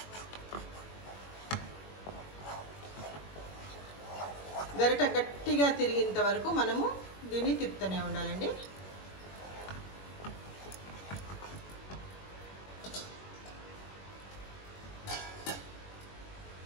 గరిట గట్టిగా తిరిగేంత వరకు మనము దీన్ని తిప్పుతూనే ఉండాలండి.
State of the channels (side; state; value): right; late; 21 ms